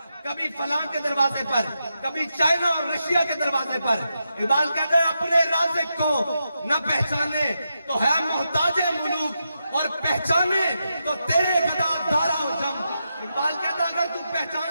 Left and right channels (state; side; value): inverted; both; correlation -0.86